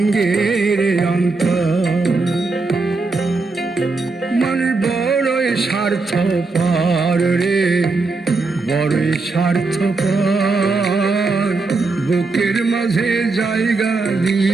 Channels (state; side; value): quieter; left; 3.7 dB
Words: রে অন্তর। মানুষ বড়ই স্বার্থপর রে, বড়ই স্বার্থপর। বুকের মাঝে জায়গা